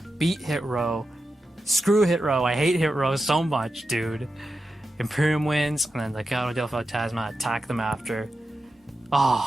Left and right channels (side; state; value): both; normal; correlation 0.90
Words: beat Hit Row. Screw Hit Row. I hate Hit Row so much, dude. Imperium wins, and then Legado del Fantasma attack them after.